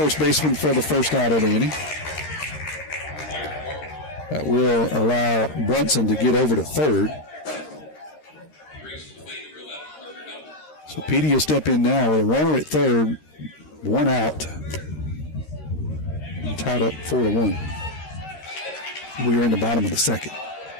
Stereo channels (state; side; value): late; right; 13 ms